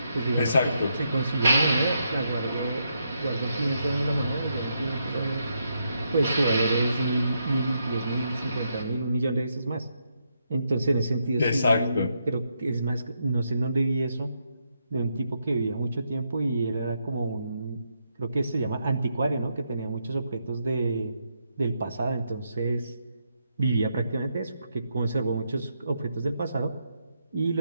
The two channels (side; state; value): both; inverted; correlation -0.80